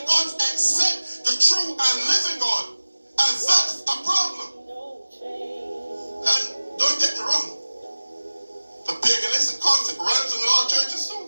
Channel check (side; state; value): both; inverted; correlation -1.00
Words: God except the true and living God. And that's a problem. And don't get me wrong, the paganistic concept runs in a lot of churches